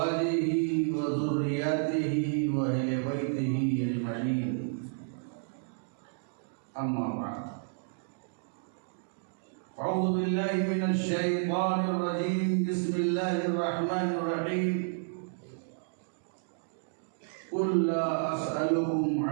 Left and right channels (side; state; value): left; silent; digital silence